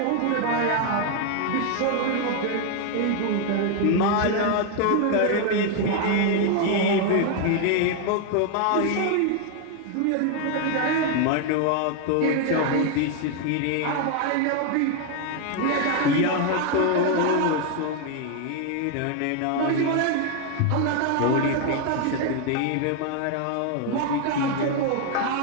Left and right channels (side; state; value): both; different; correlation 0.01